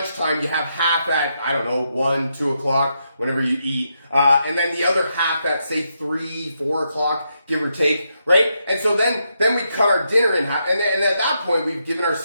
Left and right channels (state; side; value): inverted; both; correlation -0.81